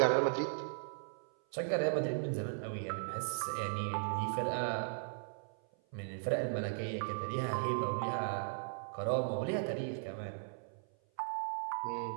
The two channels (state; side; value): silent; left; 53 dB below the other